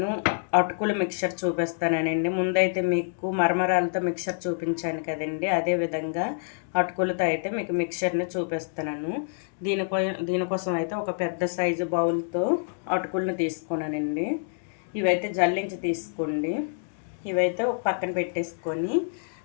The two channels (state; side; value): silent; right; digital silence